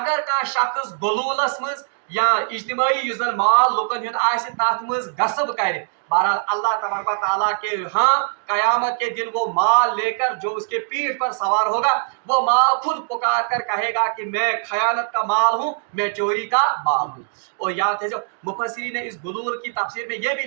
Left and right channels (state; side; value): silent; left; digital silence